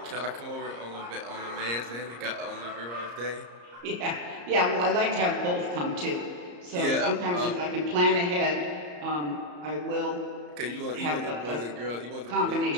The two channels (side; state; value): left; late; 34 ms